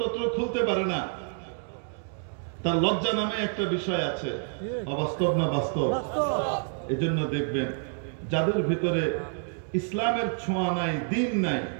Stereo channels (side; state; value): left; silent; 59 dB below the other